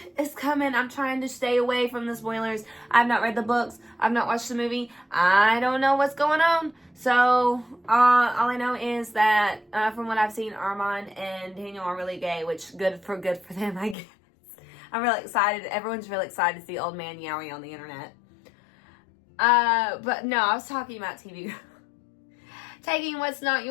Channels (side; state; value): right; drops out; at 14.0 s